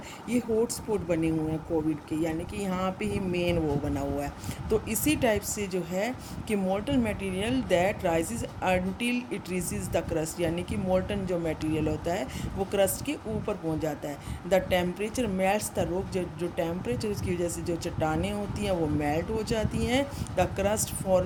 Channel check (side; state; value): both; identical; correlation 1.00